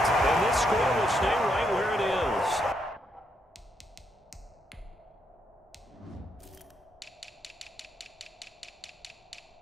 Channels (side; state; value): both; normal; correlation 0.77